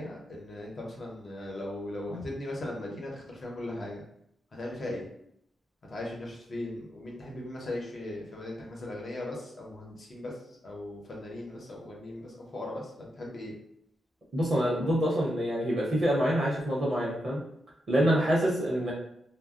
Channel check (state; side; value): normal; both; correlation 0.85